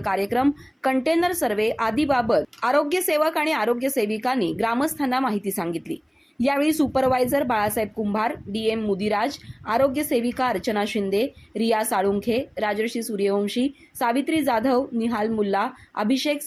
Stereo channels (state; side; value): identical; both; correlation 1.00